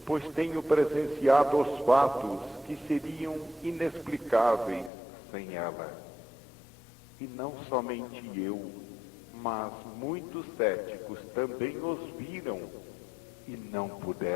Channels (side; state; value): right; drops out; at 4.9 s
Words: pois tenho presenciado os fatos que seriam inexplicáveis sem ela. E não somente eu, mas muitos céticos também os viram e não